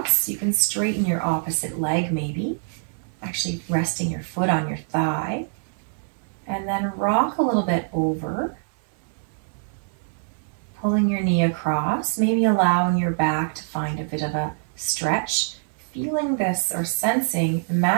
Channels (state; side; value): silent; left; digital silence